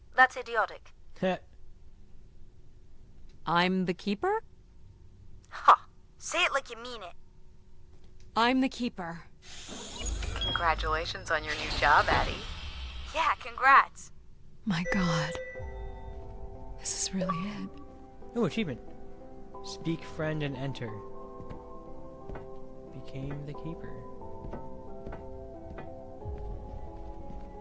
That's idiotic. I'm the Keeper? Ha! Say it like you mean it. I'm the Keeper. Congratulations on your new job, Addie. Yeah, congrats. My God. This is really it. Oh, achievement. Speak friend and enter. Became the Keeper.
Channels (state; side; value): identical; both; correlation 1.00